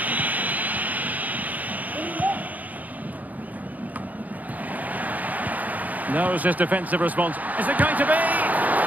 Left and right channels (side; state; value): left; late; 0.079 ms